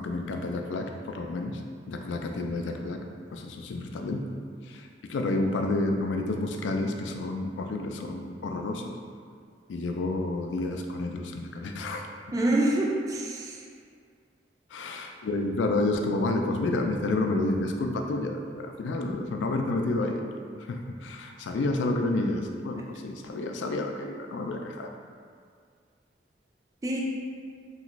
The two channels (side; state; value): both; normal; correlation 0.57